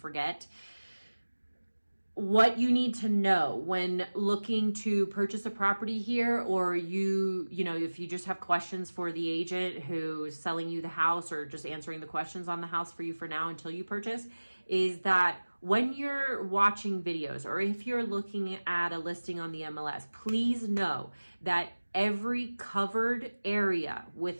What you need to know when looking to purchase a property here, or you know, if you just have questions for the agent who's selling you the house or just answering the questions on the house for you for now until you purchase, is that when you're watching videos or if you're looking at a listing on the MLS, please know that every covered area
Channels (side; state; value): both; inverted; correlation -1.00